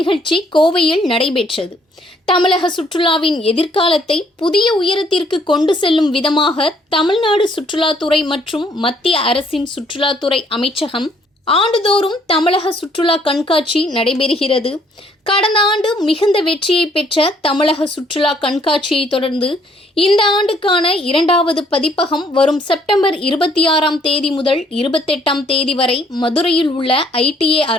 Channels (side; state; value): both; normal; correlation 0.65